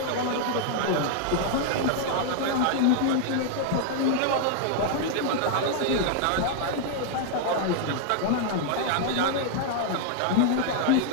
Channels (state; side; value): different; both; correlation 0.00